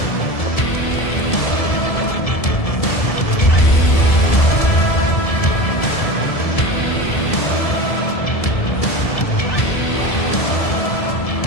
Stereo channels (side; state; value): right; late; 1.7 ms